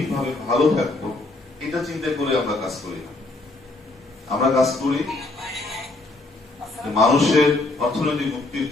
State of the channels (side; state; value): right; quieter; 3.0 dB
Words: ভালো থাকবো, এটা চিন্তা করে আমরা কাজ করি না। আমরা কাজ করি মানুষের অর্থনৈতিক মুক্তির